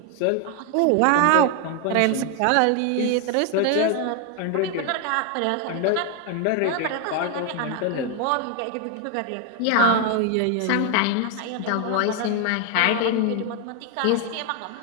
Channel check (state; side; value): different; both; correlation 0.01